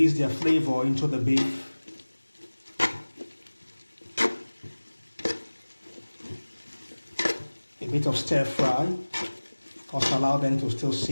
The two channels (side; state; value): both; inverted; correlation -1.00